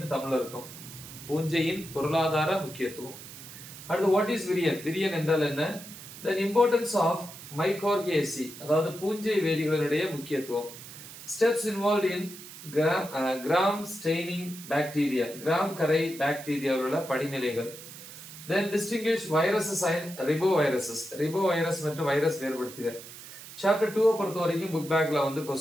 தமிழ்ல இருக்கும். பூஞ்சையின் பொருளாதார முக்கியத்துவம். அடுத்து வாட் இஸ் விரியன், விரியன் என்றால் என்ன? தென் இம்பார்ட்டன்ஸ் ஆஃப் மைகார்கியேசி, அதாவது பூஞ்சை வேதிகளினுடைய முக்கியத்துவம். Steps involve in gram staining bacteria, gram கரை பாக்டீரியாவுள்ள படிநிலைகள். Then distinguish viruses and riboviruses, ribovirus மற்றும் வைரஸ் வேறுபடுத்துக. சாப்டர் 2 பொறுத்த வரைக்கும் புக் பேக்ல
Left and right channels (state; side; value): noise; right; hiss, 15 dB below the sound